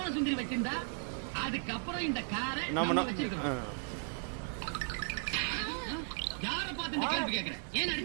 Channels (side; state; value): left; silent; 54 dB below the other